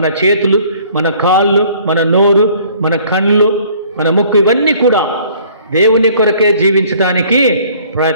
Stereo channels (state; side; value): inverted; both; correlation -0.56